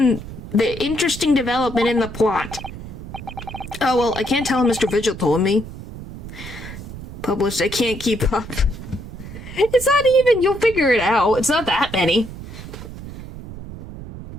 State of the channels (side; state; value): right; noise; rumble, 12 dB below the sound